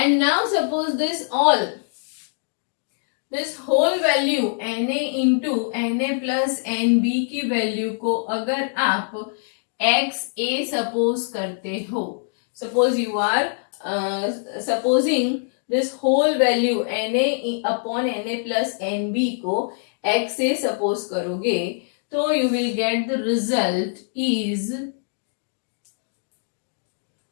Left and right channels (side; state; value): right; silent; digital silence